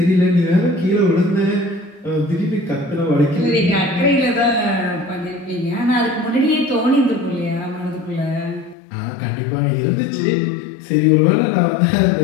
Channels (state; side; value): drops out; right; at 8.8 s